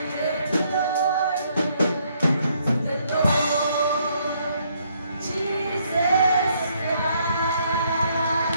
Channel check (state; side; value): inverted; both; correlation -0.70